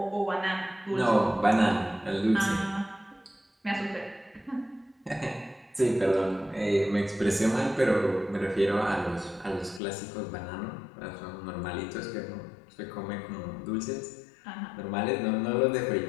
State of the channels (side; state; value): right; drops out; at 9.8 s